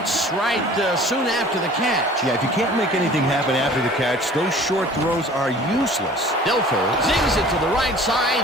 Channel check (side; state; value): both; normal; correlation 0.47